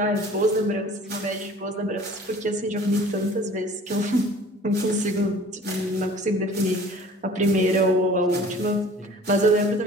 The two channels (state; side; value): normal; both; correlation 0.48